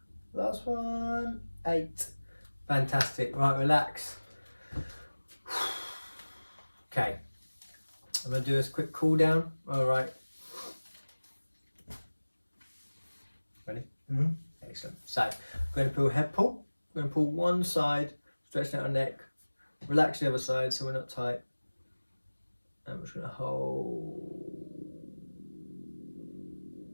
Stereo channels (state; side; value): inverted; both; correlation -1.00